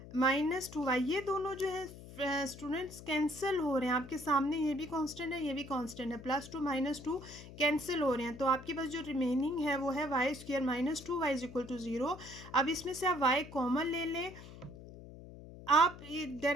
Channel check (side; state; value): left; noise; hum, 15 dB below the sound